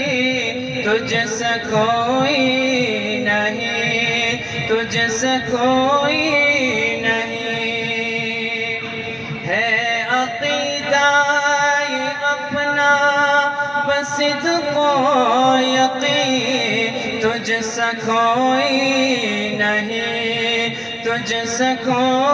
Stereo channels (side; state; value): both; identical; correlation 1.00